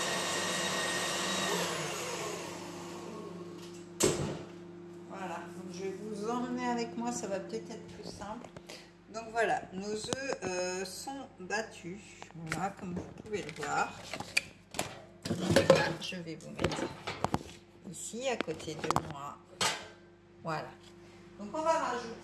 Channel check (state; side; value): identical; both; correlation 1.00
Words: Voilà, donc je vais vous emmener avec moi, ça va peut-être être plus simple. Donc voilà, nos œufs sont battus, voilà, comme vous pouvez le voir. Là, je vais vous mettre ici à côté de moi. Voilà. Donc on va